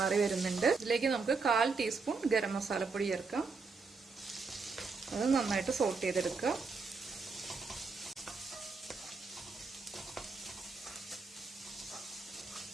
വരുന്നുണ്ട്. ഇതിലേക്ക് നമുക്ക് 1/4 ടീസ്പൂൺ ഗരം മസാലപ്പൊടി ചേർക്കാം. അത് നന്നായിട്ട് സോട്ട് ചെയ്തെടുക്കുക.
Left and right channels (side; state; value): left; quieter; 4.5 dB